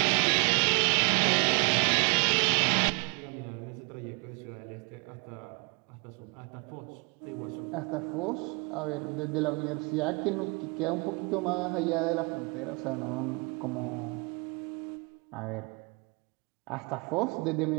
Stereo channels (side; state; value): left; quieter; 31.3 dB